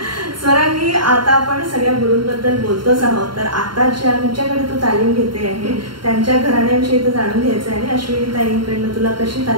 स्वरांगी, आता आपण सगळ्या गुरूंबद्दल बोलतोच आहोत, तर आता ज्यांच्याकडे तू तालीम घेते आहे त्यांच्या घराण्याविषयी तर जाणून घ्यायचं आहे आणि अश्विनी ताईंकडनं तुला कशी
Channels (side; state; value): left; late; 0.72 ms